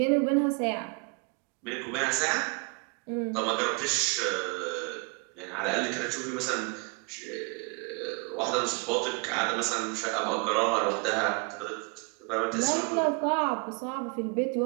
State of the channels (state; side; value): quieter; left; 31.5 dB